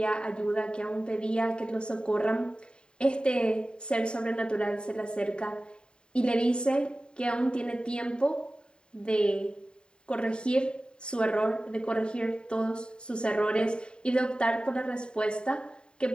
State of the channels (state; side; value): late; right; 0.050 ms